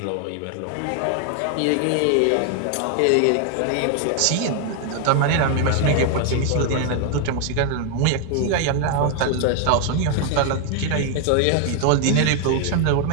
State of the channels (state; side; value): different; both; correlation 0.00